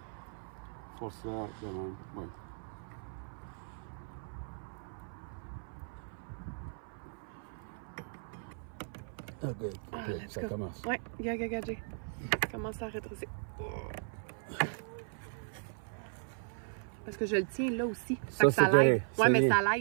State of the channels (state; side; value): silent; left; 53 dB below the other